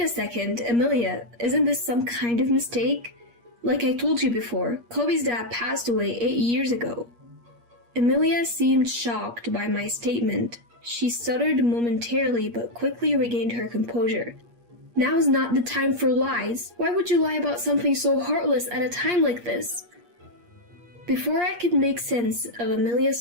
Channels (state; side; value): late; left; 8.5 ms